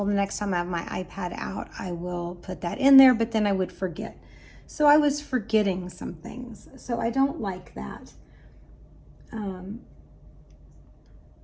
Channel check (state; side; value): identical; both; correlation 1.00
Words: the next time I have my iPad out, I will put that in there, but then I would forget. So I was forgetting some things. So I don't like that.